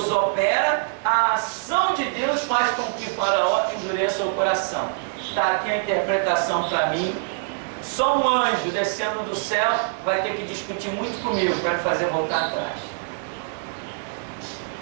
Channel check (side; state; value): left; silent; digital silence